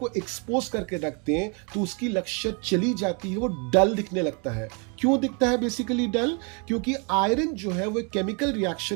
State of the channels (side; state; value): left; quieter; 34.7 dB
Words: एक्सपोज करके रख दें तो उसकी लश्यर चली जाती है, वो डल दिखने लगता है। क्यों दिखता है बेसिकली डल? क्योंकि आयरन जो है वो केमिकल